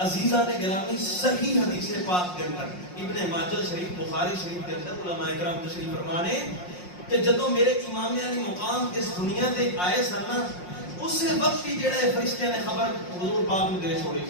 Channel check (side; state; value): right; late; 5.6 ms